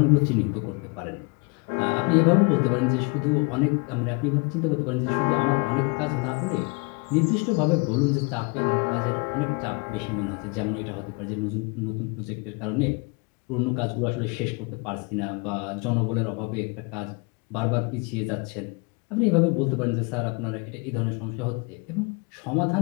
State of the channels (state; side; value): quieter; right; 31.3 dB